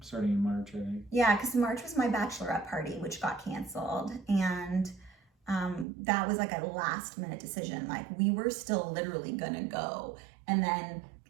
starting in March, I think. Yeah, because March was my bachelorette party, which got canceled, and that was like a last minute decision. Like we were still literally gonna go, and then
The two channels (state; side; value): drops out; left; at 5.9 s